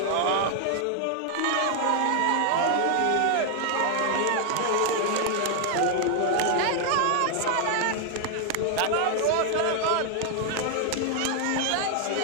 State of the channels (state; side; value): different; both; correlation 0.00